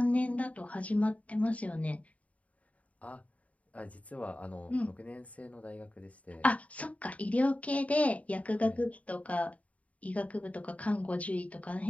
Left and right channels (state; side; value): late; right; 0.068 ms